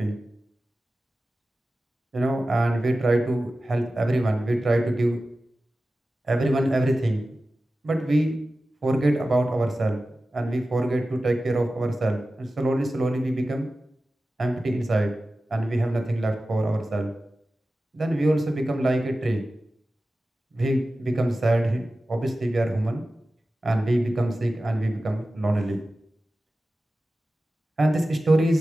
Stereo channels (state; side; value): normal; both; correlation 0.95